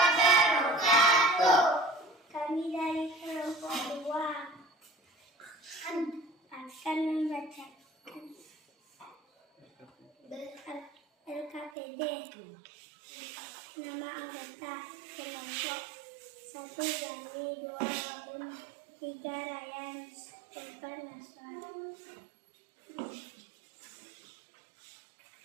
Kami dari kelompok 2 akan membacakan LKPD. Nama anggota kelompok 1 Gani, 2 Robin, 3 Ryan, 4 Naswan.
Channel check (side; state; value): left; drops out; at 11.7 s